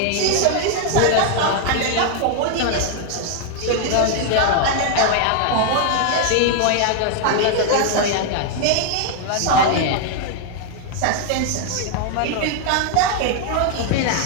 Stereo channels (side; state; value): both; different; correlation 0.00